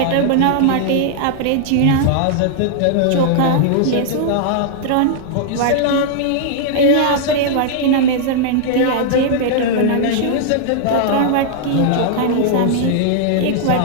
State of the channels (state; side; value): different; both; correlation -0.01